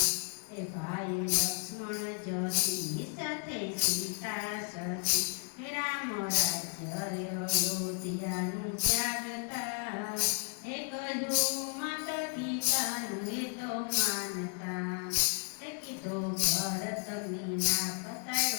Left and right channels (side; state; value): right; quieter; 39.8 dB